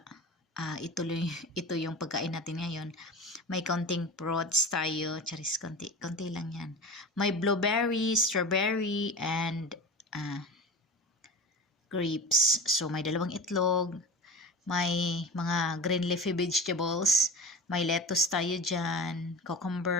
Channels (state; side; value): normal; both; correlation 0.31